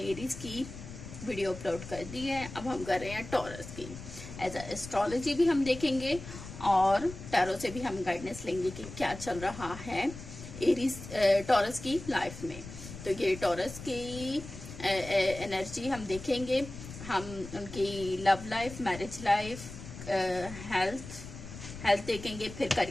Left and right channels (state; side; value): noise; left; rumble, 12 dB below the sound